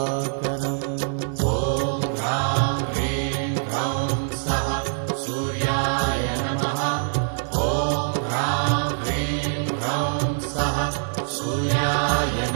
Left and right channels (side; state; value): left; silent; digital silence